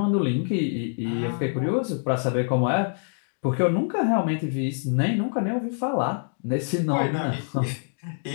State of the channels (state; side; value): silent; right; digital silence